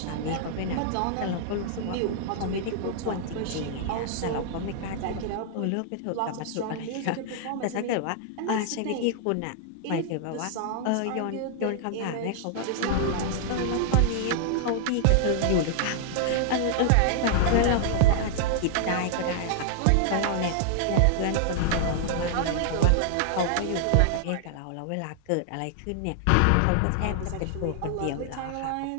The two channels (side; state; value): both; different; correlation -0.01